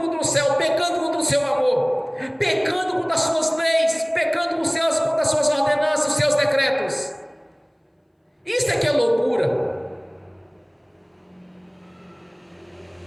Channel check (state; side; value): identical; both; correlation 1.00